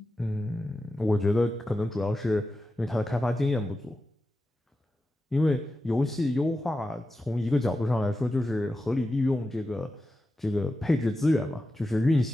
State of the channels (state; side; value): normal; both; correlation 0.91